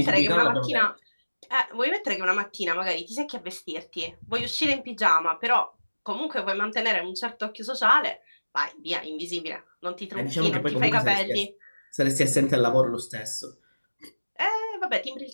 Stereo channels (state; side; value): inverted; both; correlation -1.00